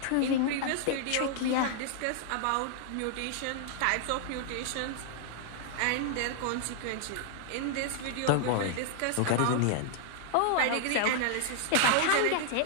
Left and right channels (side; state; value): both; different; correlation 0.00